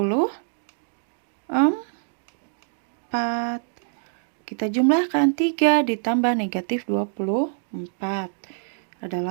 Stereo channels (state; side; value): silent; left; digital silence